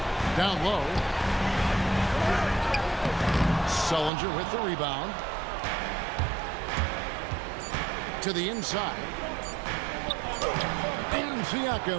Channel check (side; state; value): left; drops out; at 4.1 s